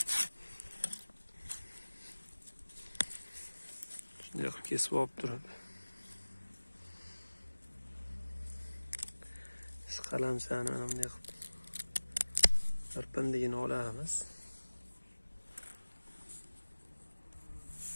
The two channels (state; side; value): inverted; both; correlation -1.00